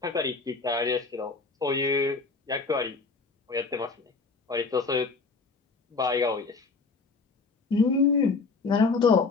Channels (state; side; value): quieter; right; 4.2 dB